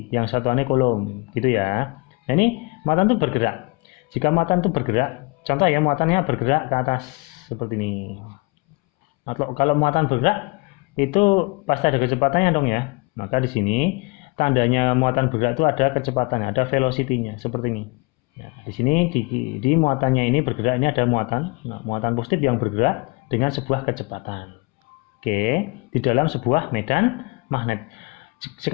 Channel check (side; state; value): right; quieter; 27.9 dB